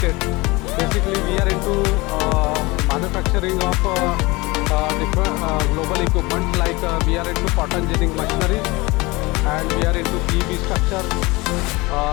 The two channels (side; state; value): right; quieter; 23.3 dB